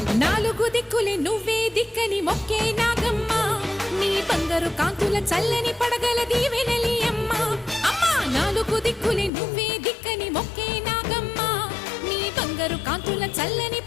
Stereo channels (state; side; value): drops out; right; at 9.3 s